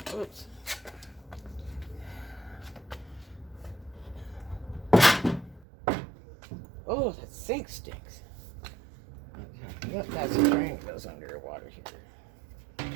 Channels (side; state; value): left; drops out; at 5.7 s